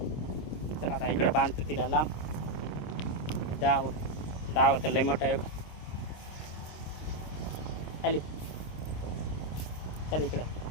चला आता इकडं बांधतो तिला लांब डाव तर लय मोठा आहे का हले चल इकडं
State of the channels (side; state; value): right; late; 26 ms